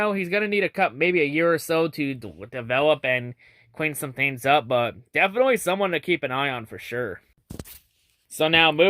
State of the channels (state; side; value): identical; both; correlation 1.00